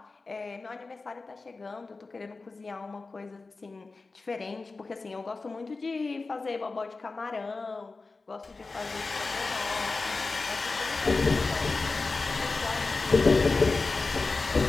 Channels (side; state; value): right; quieter; 3.8 dB